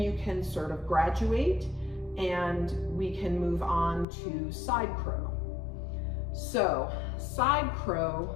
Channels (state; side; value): drops out; right; at 4.0 s